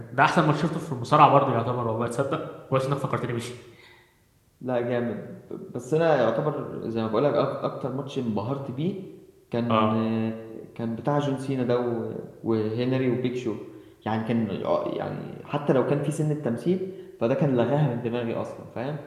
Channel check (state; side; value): identical; both; correlation 1.00